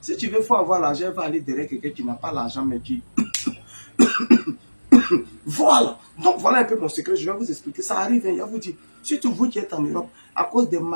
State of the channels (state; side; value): inverted; both; correlation -1.00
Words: tu veux, faut avoir l'argent, il va aller derrière quelqu'un qui n'a pas l'argent, mais qui voilà. Donc voilà un peu mon secret. Je vais vous expliquer. Ça arrive, hein, je vais vous dire. Surtout vous qui êtes en Europe, à cause des